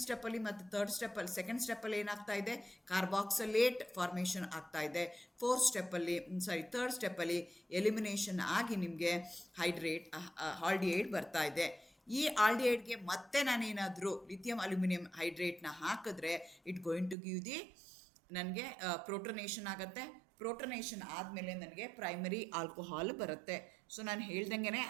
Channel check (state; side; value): drops out; left; at 17.2 s